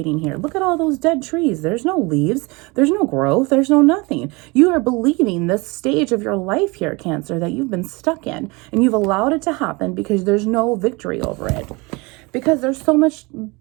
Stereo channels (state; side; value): quieter; left; 26.0 dB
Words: here. Look at all those dead trees. There's no leaves. There's no growth. There's no nothing. You are believing this stage of your life here, Cancer, that you've been stuck in, and you've allowed it to happen because there's no victory over it. Because there's so much